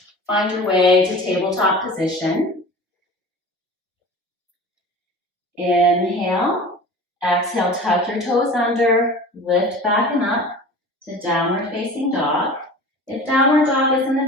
find your way to tabletop position. Inhale. Exhale, tuck your toes under, lift back and up to downward facing dog. If downward dog isn't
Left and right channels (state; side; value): normal; both; correlation 0.38